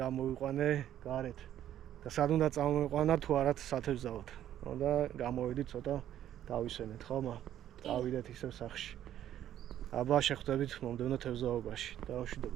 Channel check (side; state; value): left; quieter; 11.5 dB